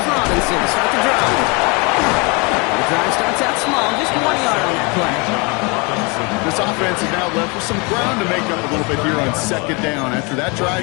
Robinson to start the drive. The drive starts out small, just 1 yard on that play. This offense is now left with some ground to make up a little bit here on 2nd down. After that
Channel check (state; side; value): quieter; right; 29.7 dB